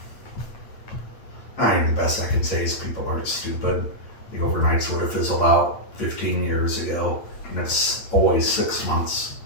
mean, the best I can say is people aren't stupid. The overnights would have fizzled out 15 years ago, and it's always 6 months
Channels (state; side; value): late; right; 8.9 ms